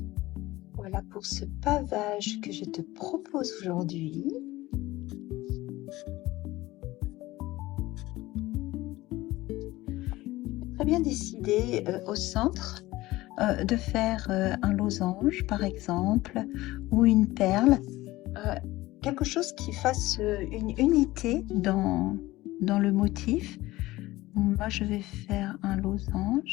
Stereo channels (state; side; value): quieter; right; 18.2 dB